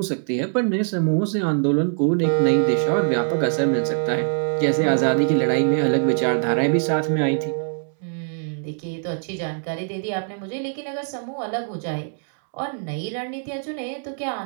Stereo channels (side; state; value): left; silent; 63 dB below the other